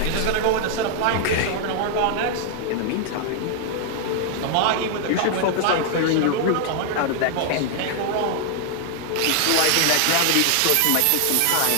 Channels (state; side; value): different; both; correlation 0.00